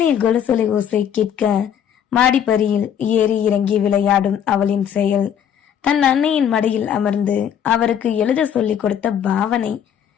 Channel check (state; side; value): quieter; right; 8.9 dB